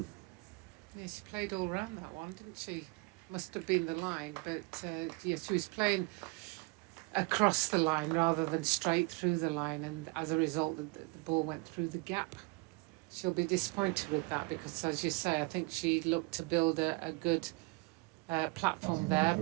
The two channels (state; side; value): quieter; left; 27.6 dB